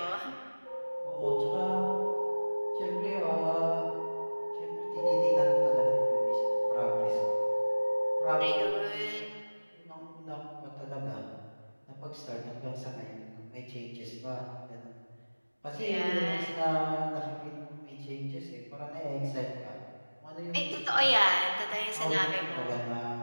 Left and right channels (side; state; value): both; inverted; correlation -1.00